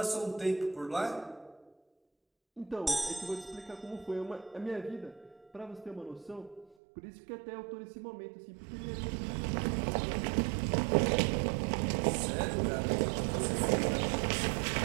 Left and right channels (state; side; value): drops out; left; at 6.8 s